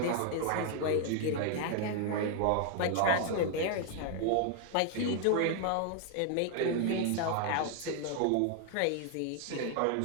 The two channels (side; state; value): both; different; correlation 0.00